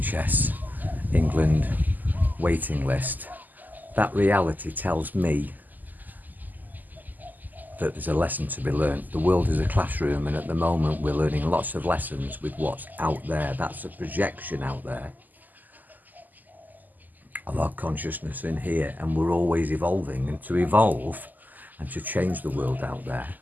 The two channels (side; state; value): left; late; 0.084 ms